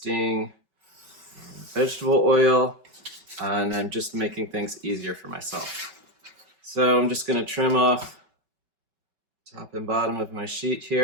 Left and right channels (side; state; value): left; late; 5.3 ms